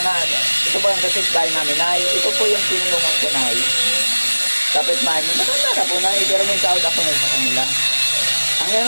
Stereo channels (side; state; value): both; inverted; correlation -1.00